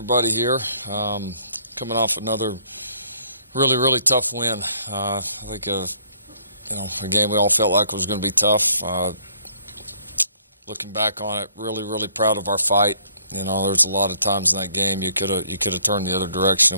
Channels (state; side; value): inverted; both; correlation -0.63